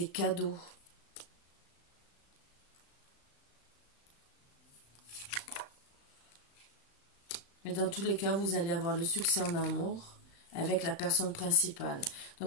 cadeaux. Mais dans tous les cas, vous allez avoir le succès en amour avec la personne principale.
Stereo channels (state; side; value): late; right; 36 ms